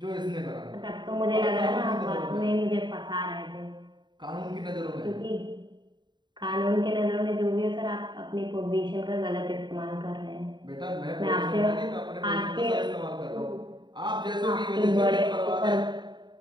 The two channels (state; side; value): late; left; 0.22 ms